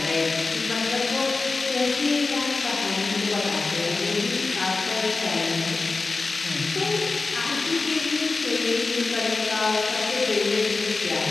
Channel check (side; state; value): right; quieter; 3.8 dB